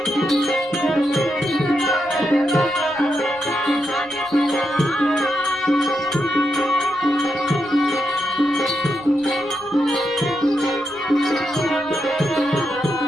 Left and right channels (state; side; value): noise; right; rumble, 26 dB below the sound